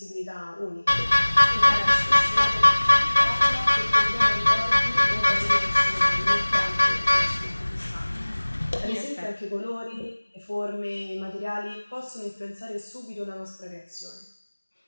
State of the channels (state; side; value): inverted; both; correlation -1.00